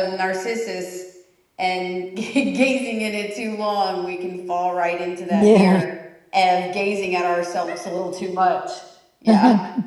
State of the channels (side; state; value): both; identical; correlation 1.00